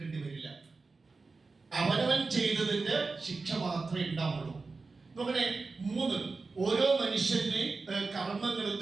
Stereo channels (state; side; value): quieter; left; 4.0 dB